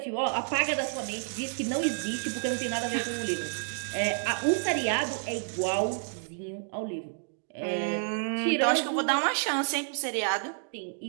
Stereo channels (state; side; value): silent; left; digital silence